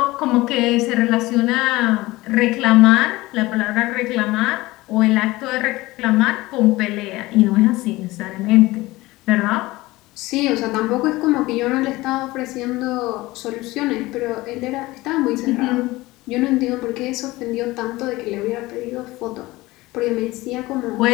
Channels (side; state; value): right; quieter; 19.6 dB